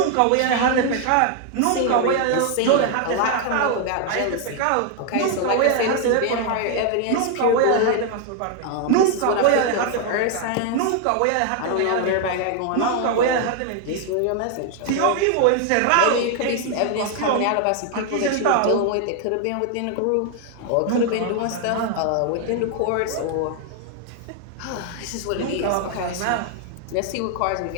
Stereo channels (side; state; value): both; different; correlation 0.00